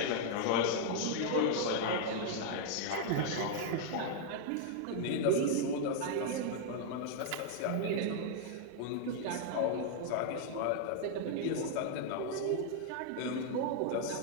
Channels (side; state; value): both; different; correlation 0.00